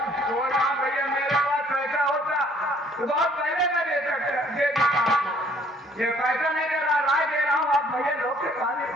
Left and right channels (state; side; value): normal; both; correlation 0.60